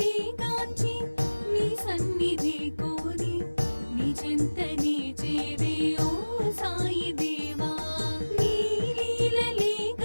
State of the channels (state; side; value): inverted; both; correlation -1.00